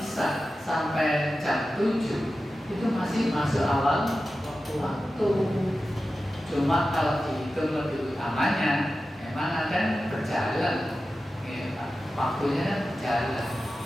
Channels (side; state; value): both; normal; correlation 0.93